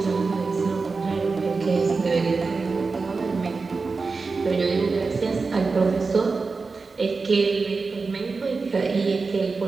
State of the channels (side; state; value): left; quieter; 4.3 dB